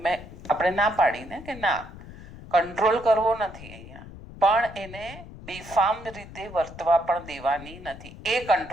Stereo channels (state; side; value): noise; left; rumble, 15 dB below the sound